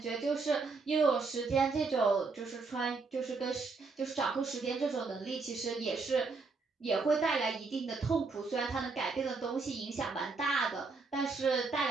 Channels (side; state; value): left; quieter; 4.3 dB